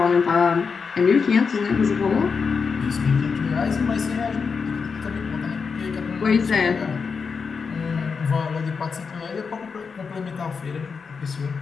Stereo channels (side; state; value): right; quieter; 5.4 dB